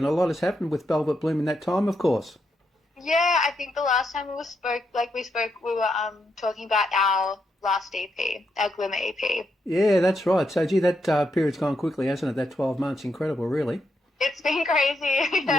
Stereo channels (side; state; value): both; normal; correlation 0.81